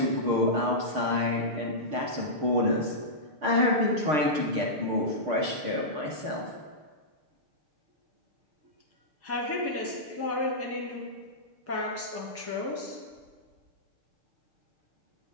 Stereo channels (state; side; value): late; left; 6.6 ms